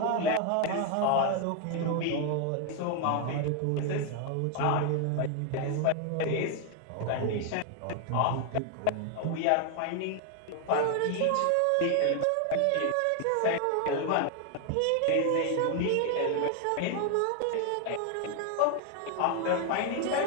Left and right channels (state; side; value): different; both; correlation 0.00